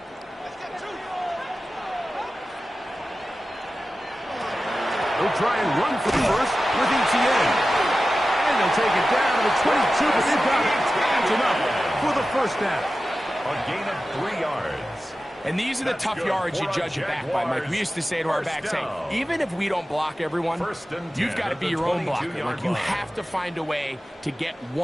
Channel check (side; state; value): both; normal; correlation 0.94